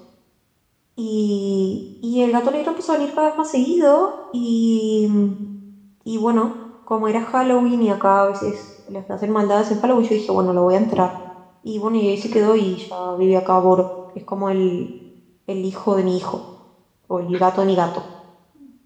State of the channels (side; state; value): both; identical; correlation 1.00